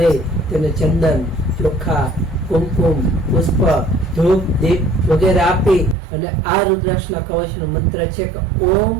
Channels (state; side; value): drops out; left; at 6.0 s